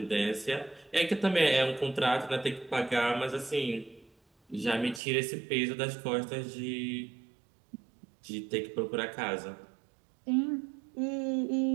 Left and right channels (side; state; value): left; drops out; at 5.0 s